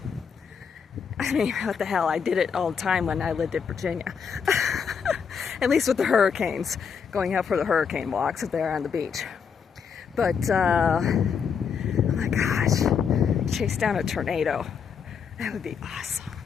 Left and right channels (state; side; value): quieter; right; 6.6 dB